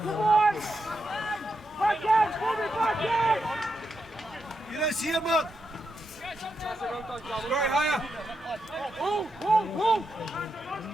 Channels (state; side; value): normal; both; correlation 0.85